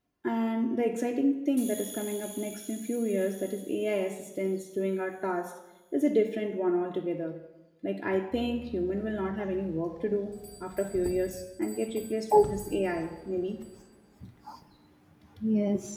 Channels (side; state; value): both; identical; correlation 1.00